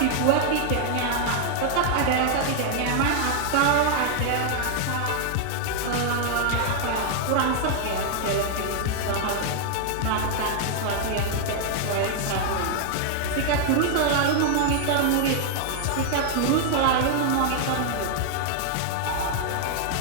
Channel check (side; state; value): both; different; correlation 0.00